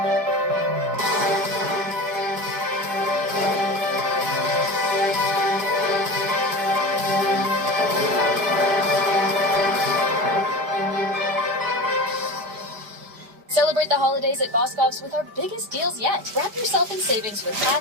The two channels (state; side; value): late; left; 5.0 ms